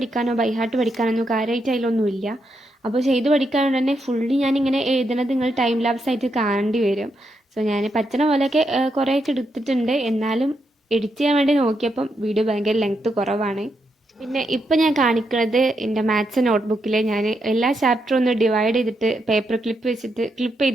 ബൈഹാർട്ട് പഠിക്കാനോ കാര്യമായിട്ട് അതിലൊന്നുമില്ല. അപ്പോൾ ചെയ്ത് പഠിക്കാണ്ട് തന്നെ ഫുള്ളി ഞാനിങ്ങനെ എഴുതുന്നത് നിങ്ങൾ ടൈം ലാപ്സ് ആയിട്ട് കാണേണ്ടി വരും. സോ ഞാൻ പറ്റുന്ന പോലെയൊക്കെ കുറേയൊക്കെ എടുത്തിട്ടുണ്ട്. എന്നാലും എഡിറ്റ് ചെയ്യാൻ വേണ്ടി നോക്കിയപ്പം വീഡിയോ ഭയങ്കര ലെങ്ത്ത് കുറവാണ്. പിന്നെ ഇപ്പം ഞാൻ കാണിക്കുന്നത് എൻ്റെ മാത്സ് നോട്ട്ബുക്കിൽ ഞാൻ എല്ലാ ചാപ്റ്ററും ഒന്ന് ഡിവൈഡ് ചെയ്തിട്ട് പേപ്പർ ക്ലിപ്പ് വെച്ചിട്ട് ക്ലിപ്പ്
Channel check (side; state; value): both; normal; correlation 0.81